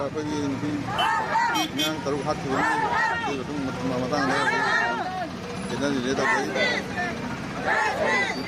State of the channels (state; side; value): identical; both; correlation 1.00